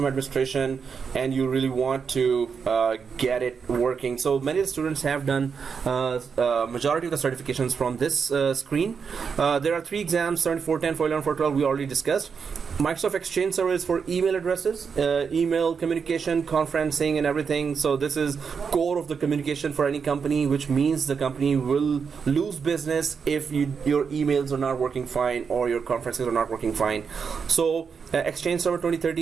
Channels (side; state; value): left; quieter; 6.0 dB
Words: administration and you really want to get it working. So many of the students have done majority of the certifications from this screen. There are 3 exams: 7410, 411, 412. We already discussed. Microsoft Exchange Server is for email addresses, email communication, conferencing, and everything. So this is core of the communication for any company, which means the company will lose business if your emails are not working fine or your conferences are not working fine. So Exchange Server